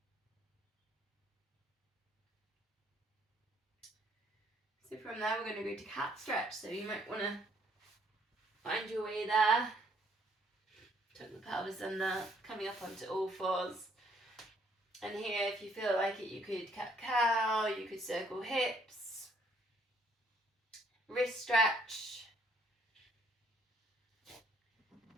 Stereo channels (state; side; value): normal; both; correlation 0.67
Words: So from there we're going to go to cat stretch. So you might want to find your way there. Tuck the pelvis under, coming up onto all fours. And here, if you feel like it, you could cat-cow, you could circle hips, wrist stretch,